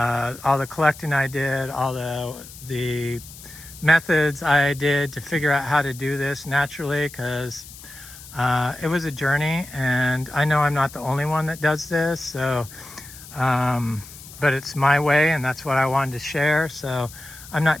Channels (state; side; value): noise; left; hiss, 17 dB below the sound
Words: the collecting I did, all the methods I did to figure out how to do this naturally, because it was a journey, and I know I'm not the only one that does this. So but it's my way, and that's what I wanted to share. So I'm